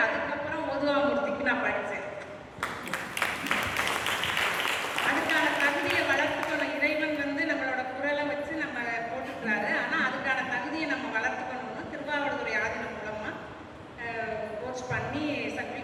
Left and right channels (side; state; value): both; identical; correlation 1.00